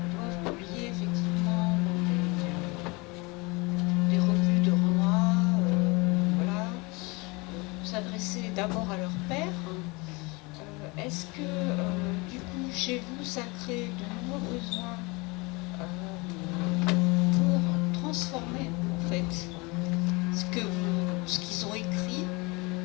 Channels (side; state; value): right; quieter; 26.6 dB